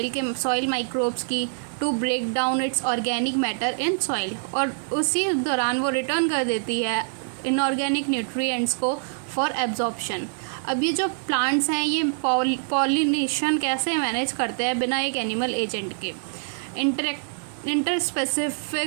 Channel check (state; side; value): silent; left; 56 dB below the other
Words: माइक्रोब्स की, to break down its organic matter in soil, और उसी दौरान वो रिटर्न कर देती है इनऑर्गेनिक न्यूट्रिएंट्स को फॉर एब्जॉर्प्शन। अब ये जो प्लांट्स हैं ये पॉलिनेशन कैसे मैनेज करते हैं बिना एक एनिमल एजेंट के।